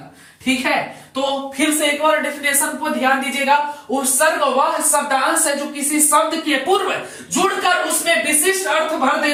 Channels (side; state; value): both; identical; correlation 1.00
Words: ठीक है। तो फिर से एक बार डेफिनेशन को ध्यान दीजिएगा। उपसर्ग वह शब्दांश है जो किसी शब्द के पूर्व जुड़कर उसमें विशिष्ट अर्थ भर